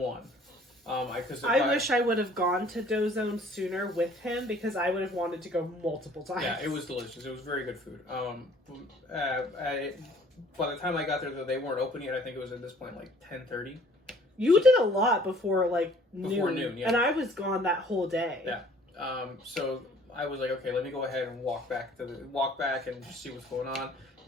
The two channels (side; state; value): both; normal; correlation 0.55